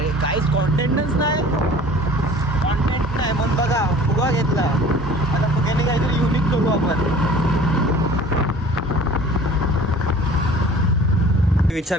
काहीच कॉन्टेंटच नाही. कॉन्टेंट नाही म्हणून बघा फुगा घेतला. आता फुग्याने काहीतरी युनिक करू आपण.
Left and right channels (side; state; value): both; normal; correlation 0.46